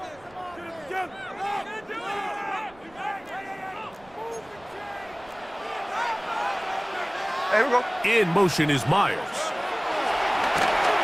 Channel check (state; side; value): noise; right; rumble, 26 dB below the sound